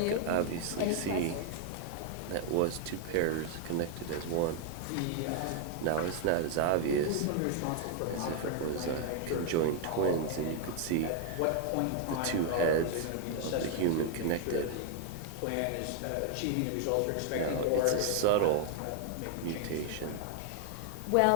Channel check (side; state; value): both; different; correlation 0.00